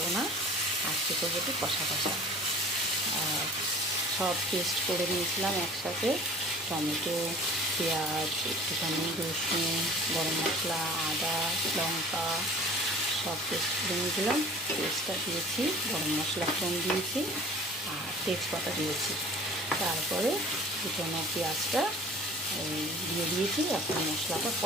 না, আজকে করবো একটু কষা কষা। সব পেস্ট করে নিয়েছিলাম একসাথে, টমেটো, পেঁয়াজ, একটুখানি রসুন, গরম মশলা, আদা, লঙ্কা সব পেস্ট করে নিয়েছিলাম। পেস্টটা দিয়েছি, গরম মশলা ফোড়ন দিয়েছি আর তেজপাতা দিয়েছি। তারপরে কুচনো পেঁয়াজটা দিয়ে দিয়েছি। এখন মশলাটা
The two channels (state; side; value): normal; both; correlation 0.45